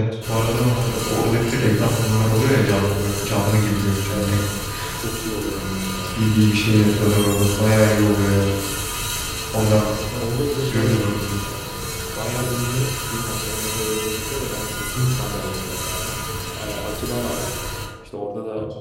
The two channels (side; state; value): both; identical; correlation 1.00